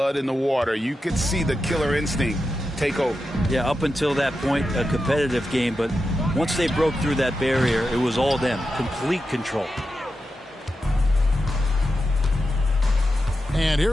in the water, you could see the killer instinct take over. Yeah, up until that point, a competitive game. But once they broke through that barrier, it was all them. Complete control. And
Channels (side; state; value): both; normal; correlation 0.89